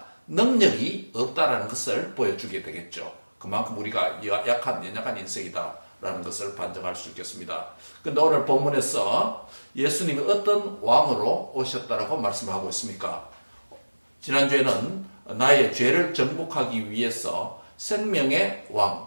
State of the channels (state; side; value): inverted; both; correlation -1.00